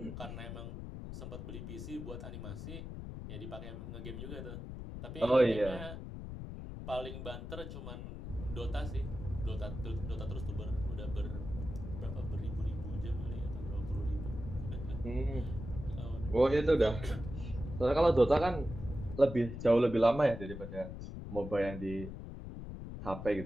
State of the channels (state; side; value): noise; left; rumble, 8 dB below the sound